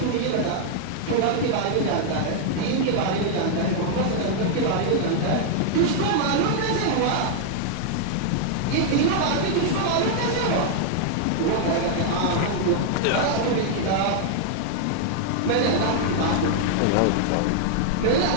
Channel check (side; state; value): both; different; correlation 0.00